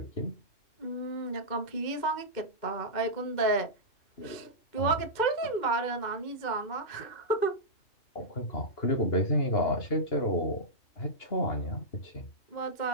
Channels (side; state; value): right; late; 2.1 ms